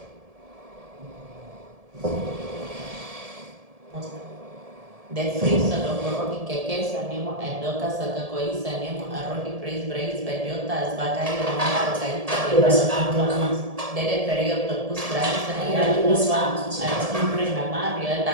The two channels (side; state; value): left; late; 1.7 ms